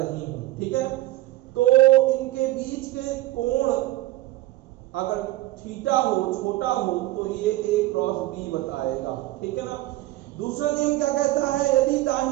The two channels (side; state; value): left; quieter; 17.0 dB